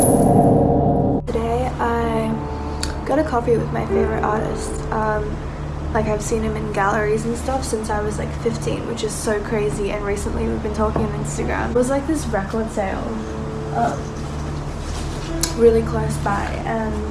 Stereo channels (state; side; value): identical; both; correlation 1.00